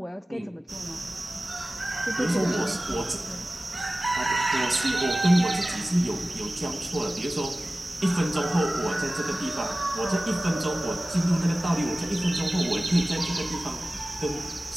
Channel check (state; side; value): normal; both; correlation 0.97